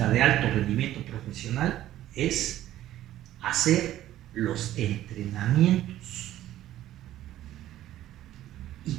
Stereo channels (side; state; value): left; quieter; 13.4 dB